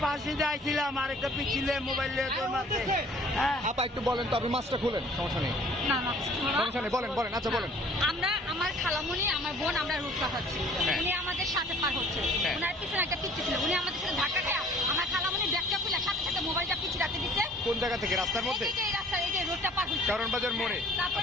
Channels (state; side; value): normal; both; correlation 0.53